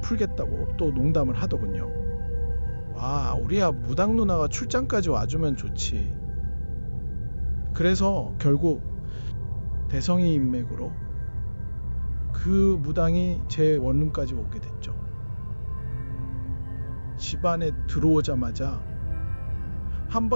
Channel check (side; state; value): both; inverted; correlation -1.00